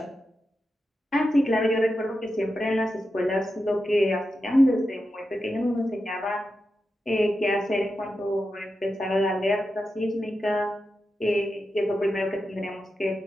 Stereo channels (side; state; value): both; normal; correlation 0.89